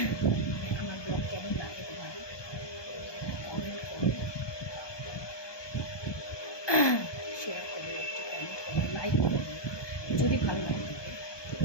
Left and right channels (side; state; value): right; late; 1.2 ms